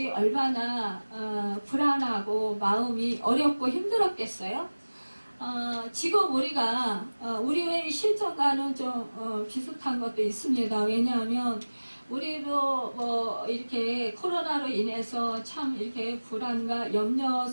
얼마나 불안하고 마음이 어렵고 힘들었겠어요. 지금 우리가 우리의 실정과는 좀 비슷한 것도 있습니다. 왜냐하면 우리도 뭐 이렇게 코로나로 인해서 참 이렇게 불안과 염려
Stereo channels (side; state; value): both; inverted; correlation -1.00